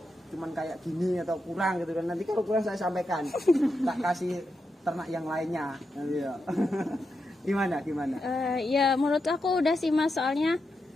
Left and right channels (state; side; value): normal; both; correlation 0.86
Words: cuman kayak gini atau kurang gitu kan? Nanti kalau kurang saya sampaikan, tak kasih ternak yang lainnya. Iya. Gimana? Ya menurut aku udah sih Mas, soalnya